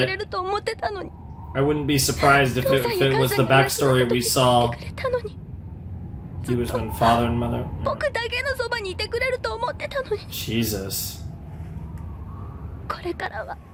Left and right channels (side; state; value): both; identical; correlation 1.00